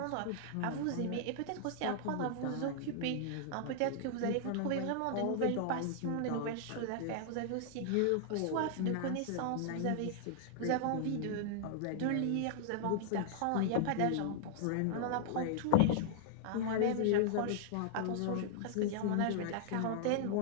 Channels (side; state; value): both; different; correlation -0.01